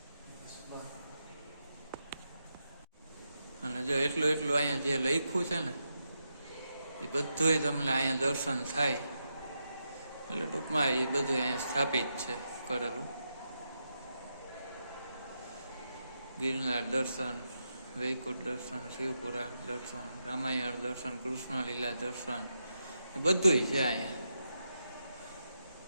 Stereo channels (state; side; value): inverted; both; correlation -0.85